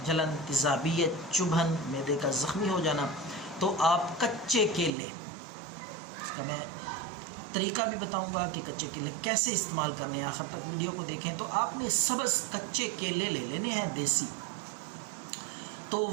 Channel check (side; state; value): left; drops out; at 4.9 s